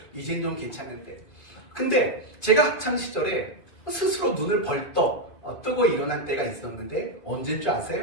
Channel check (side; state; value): right; late; 2.5 ms